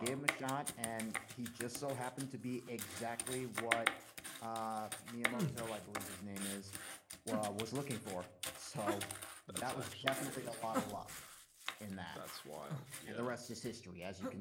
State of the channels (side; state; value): both; identical; correlation 1.00